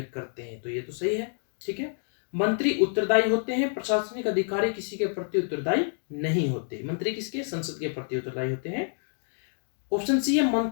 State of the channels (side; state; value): right; silent; digital silence